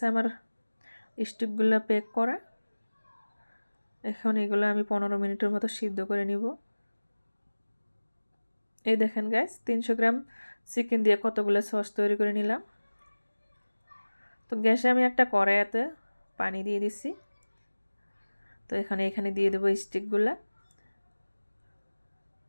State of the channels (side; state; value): both; inverted; correlation -1.00